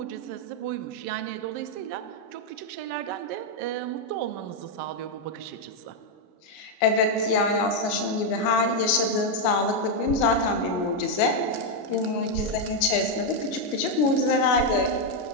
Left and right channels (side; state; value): right; late; 33 ms